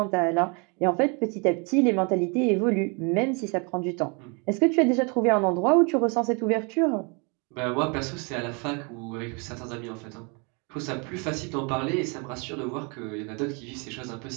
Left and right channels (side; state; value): left; quieter; 32.9 dB